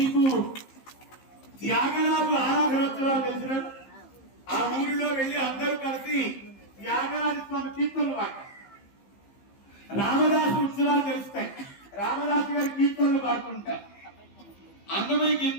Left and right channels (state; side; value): late; right; 15 ms